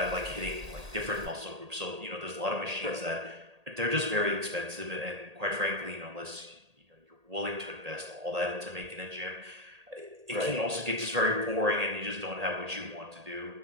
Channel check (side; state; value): left; late; 1.8 ms